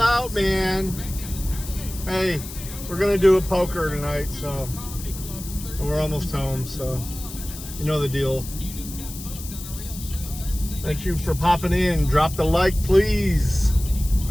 man. Hey, we're gonna do a poker tonight, so we're almost home, so you know the deal. Thank you for popping in. Drop the like, please.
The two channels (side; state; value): left; noise; hiss, 12 dB below the sound